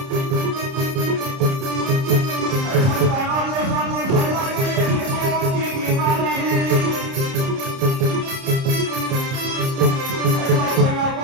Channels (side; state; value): left; late; 30 ms